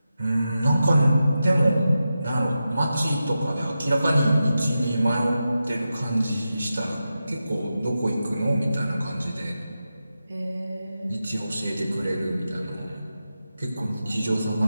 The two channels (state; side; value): inverted; both; correlation -0.91